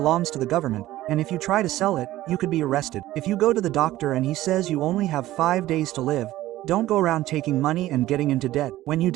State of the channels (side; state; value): left; quieter; 15.4 dB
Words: to the government, and if you try to sell it, you could be arrested. If you go to the doctor and he says you only have 5 days to live, don't go around taking money and getting into debt. When you